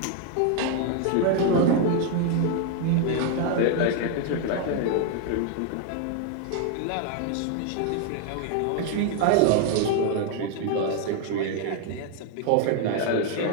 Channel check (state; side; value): different; both; correlation 0.01